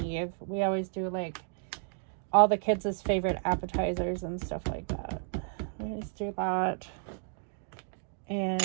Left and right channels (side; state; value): left; silent; digital silence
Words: We always do like all the kids' favorite appetizers and stuff like that. We always do that.